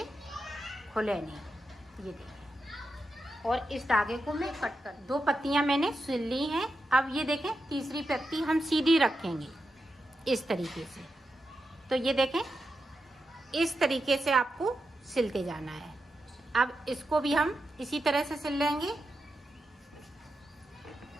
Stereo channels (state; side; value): normal; both; correlation 0.88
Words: खुले नहीं। ये देखिए, और इस धागे को मैं कट कर 2 पत्तियां मैंने सिल ली हैं। अब ये देखें, तीसरी पत्ती हम सीधी रखेंगे इस तरीके से। तो ये देखें, इस तरीके से आपको सिलते जाना है। अब इसको भी हम इसी तरह से सिल लेंगे।